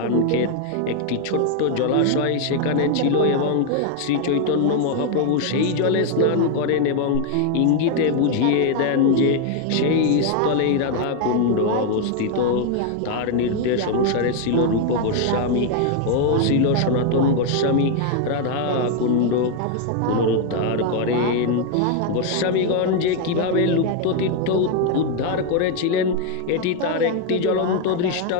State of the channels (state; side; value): different; both; correlation 0.01